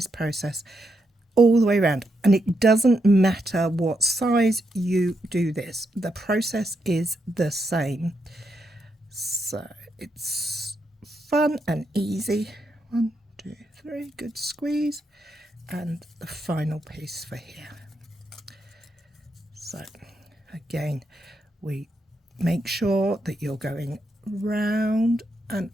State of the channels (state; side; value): normal; both; correlation 0.82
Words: process all the way around, and it doesn't matter what size you do this, the process is the same. So it's fun and easy. 1, 2, 3, good squeeze, and the final piece for here. So again, we make sure that you're going round and